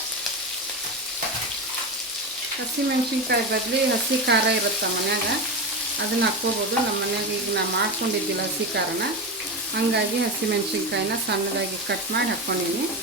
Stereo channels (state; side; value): normal; both; correlation 0.19